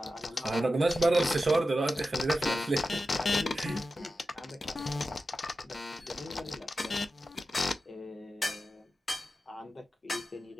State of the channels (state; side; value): normal; both; correlation 0.92